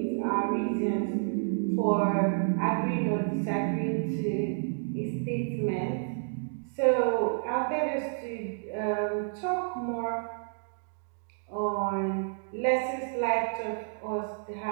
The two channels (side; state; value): left; silent; digital silence